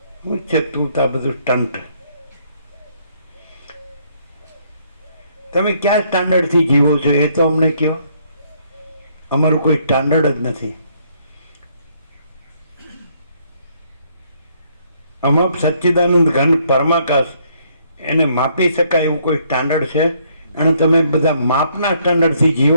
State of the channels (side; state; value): both; inverted; correlation -0.68